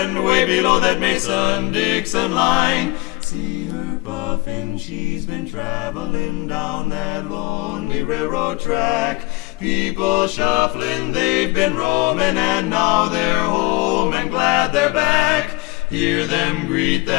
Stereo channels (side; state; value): right; quieter; 22.9 dB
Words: way below that Mason-Dixon line. See her puffin', she's been traveling down that lonely railroad track. People shuffling, they've been roaming, and now they're home and glad they're back. Hear them greet